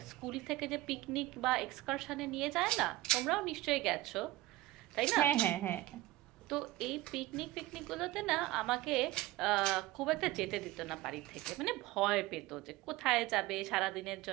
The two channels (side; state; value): left; quieter; 17.3 dB